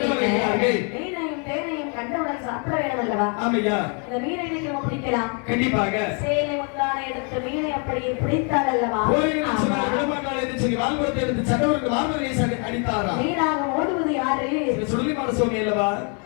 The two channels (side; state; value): right; quieter; 37.7 dB